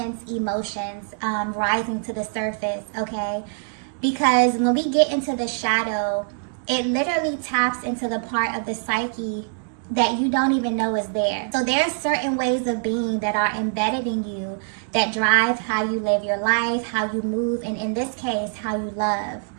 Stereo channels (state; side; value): silent; left; digital silence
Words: emotions rising to the surface, okay? Because when we get into the shadow, it literally taps into the part of the psyche that you don't even know is there. So there are certain ways of being that are embedded in you that drive how you live your life, how you move, and in this case, how you love.